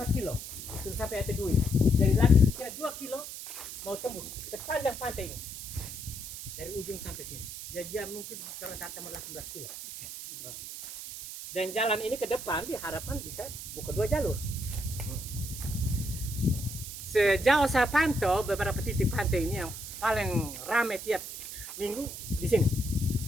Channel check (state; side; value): noise; right; hiss, 9 dB below the sound